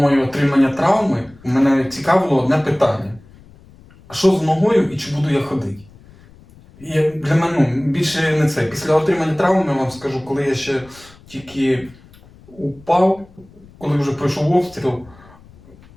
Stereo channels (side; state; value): left; noise; rumble, 25 dB below the sound